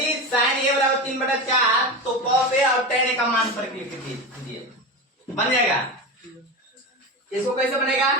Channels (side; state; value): both; normal; correlation 0.22